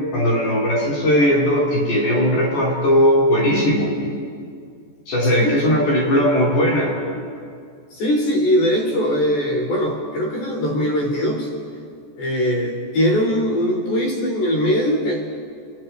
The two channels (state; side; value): late; right; 14 ms